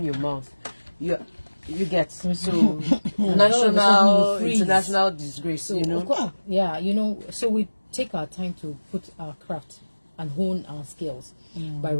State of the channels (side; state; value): both; inverted; correlation -1.00